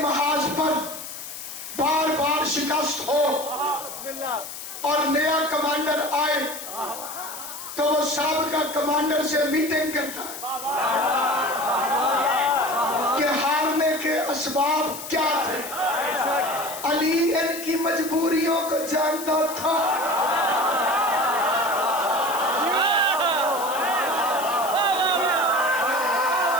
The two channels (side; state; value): left; noise; hiss, 10 dB below the sound